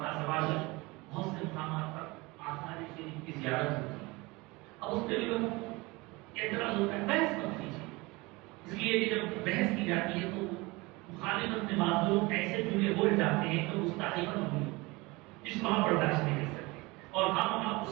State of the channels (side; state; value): left; quieter; 23.6 dB